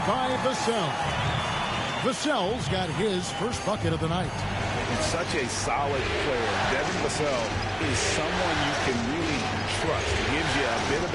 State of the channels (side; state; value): both; identical; correlation 1.00